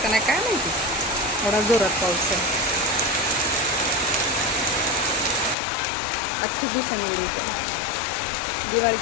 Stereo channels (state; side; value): drops out; right; at 5.6 s